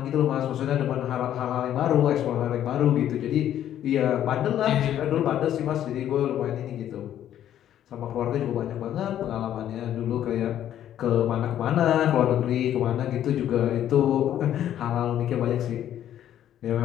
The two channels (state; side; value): quieter; right; 11.1 dB